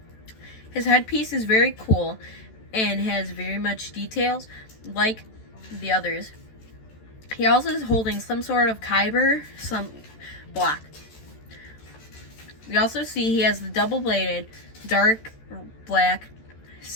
His headpiece is very cool and has very much details like the others. He also is holding some sort of kyber, some block. We also see he has the double-bladed, dark black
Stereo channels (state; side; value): late; right; 14 ms